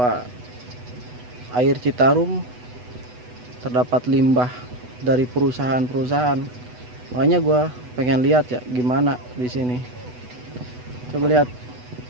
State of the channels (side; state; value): left; late; 8.1 ms